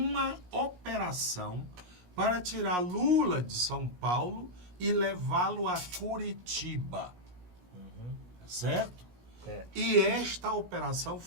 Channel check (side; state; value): left; late; 17 ms